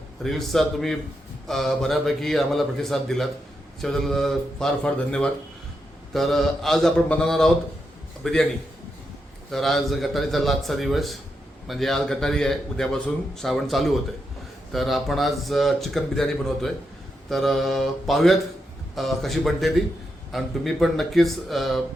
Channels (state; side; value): normal; both; correlation 0.84